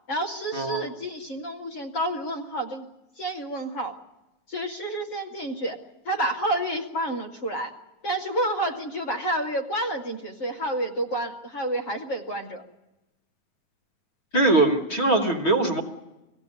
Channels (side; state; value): right; late; 9.4 ms